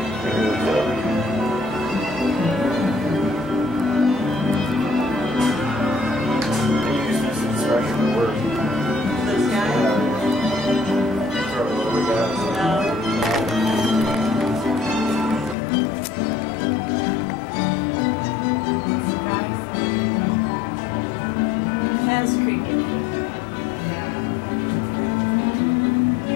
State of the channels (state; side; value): drops out; right; at 15.6 s